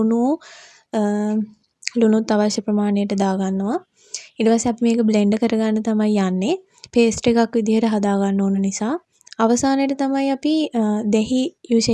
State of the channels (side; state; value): both; identical; correlation 1.00